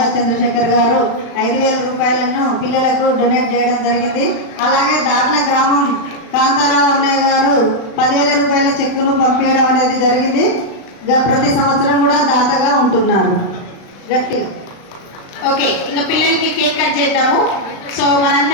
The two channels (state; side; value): late; right; 36 ms